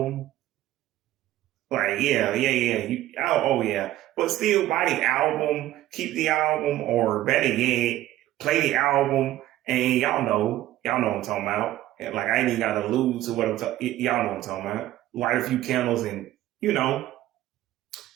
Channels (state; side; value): quieter; left; 14.5 dB